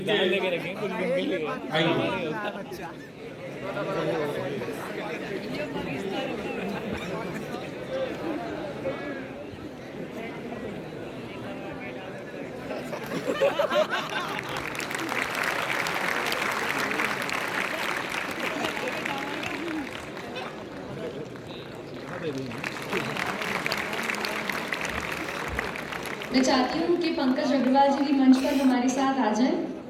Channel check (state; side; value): identical; both; correlation 1.00